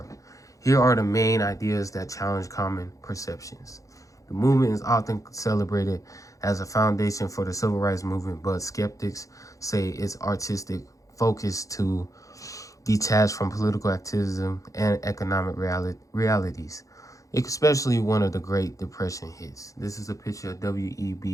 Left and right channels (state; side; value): late; right; 0.16 ms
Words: Here are the main ideas that challenge common perceptions. The movement is often celebrated as a foundation for the civil rights movement, but skeptics say its artistic focus to detach from political activism and economic realities, especially one of the Great Depression hits. This is a picture of